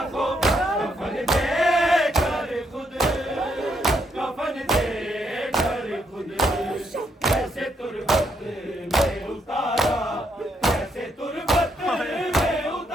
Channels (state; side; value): normal; both; correlation 0.76